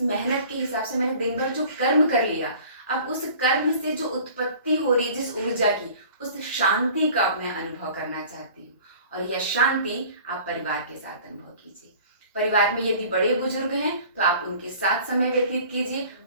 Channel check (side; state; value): both; inverted; correlation -0.47